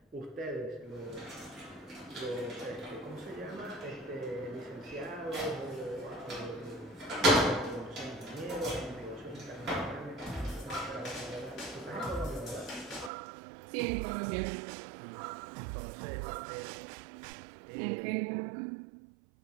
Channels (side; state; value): left; drops out; at 13.1 s